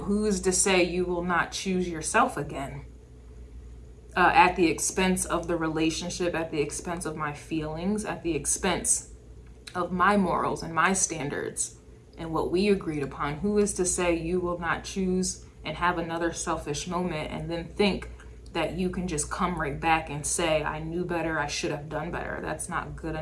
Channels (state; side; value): identical; both; correlation 1.00